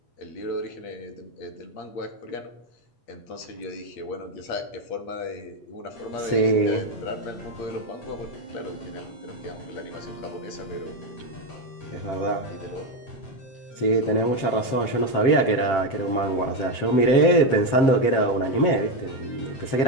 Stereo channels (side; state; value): right; late; 7.7 ms